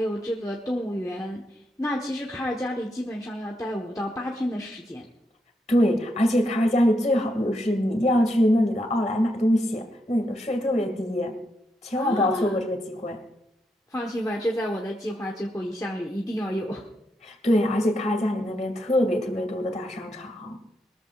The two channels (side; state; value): both; normal; correlation 0.81